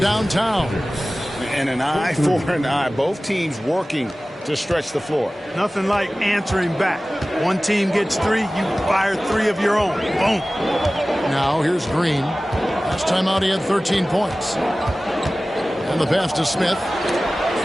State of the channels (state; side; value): normal; both; correlation 0.97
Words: And an eye for an eye. Both teams working to stretch the floor. Nothing like answering back. One team gets three, you fire three of your own. Boom. Now here's Green. Last time out he had 13 points. And the pass to Smith.